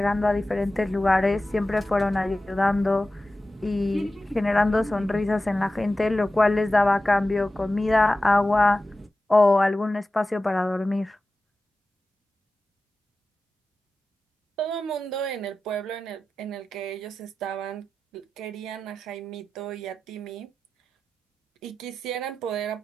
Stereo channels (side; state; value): both; normal; correlation 0.94